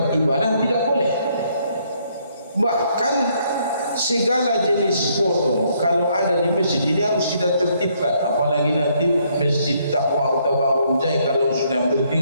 ibadah tidak boleh. Bahkan segala jenis foto kalau ada di masjid ini harus kita tertibkan. Apalagi nanti Masjid Taqwa atau Bangun Jai kalau sudah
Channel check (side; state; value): both; inverted; correlation -0.70